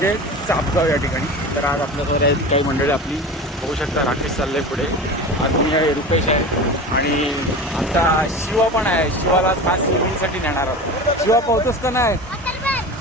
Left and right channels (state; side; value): normal; both; correlation 0.31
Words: चापगाव या ठिकाणी. तर आज आपल्याकडे आहेत काही मंडळी आपली होऊ शकता. राकेश चालले पुढे, आज मी आहे, रुपेश आहे आणि आता शिवा पण आहे. शिवाला खास स्विमिंगसाठी नेणार आहोत. शिवा पोहतोस का नाही?